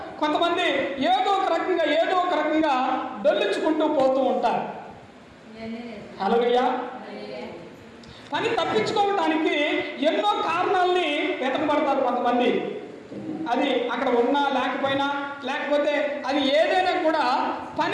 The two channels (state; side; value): identical; both; correlation 1.00